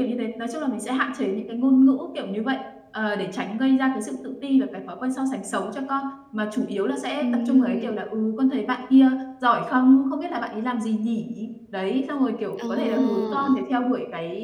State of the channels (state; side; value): identical; both; correlation 1.00